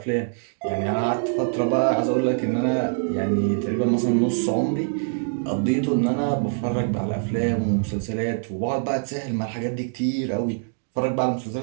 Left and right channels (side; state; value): left; silent; digital silence